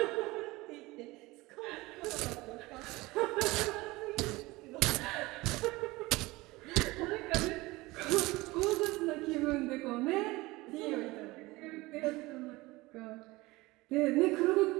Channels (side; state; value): left; quieter; 21.1 dB